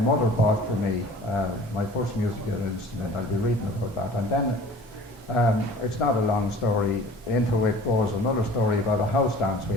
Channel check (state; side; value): normal; both; correlation 0.46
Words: bought for me my first musical instrument. I'll be reading about that. And then it's not a long story. Into it goes another story about a house dance we